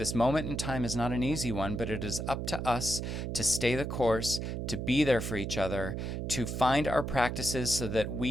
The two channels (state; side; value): noise; right; hum, 3 dB below the sound